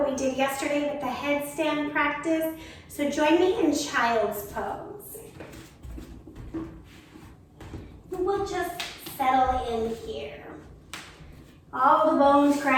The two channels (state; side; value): identical; both; correlation 1.00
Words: we did yesterday with the headstand practice. So join me in child's pose. We'll just settle in here. All the bones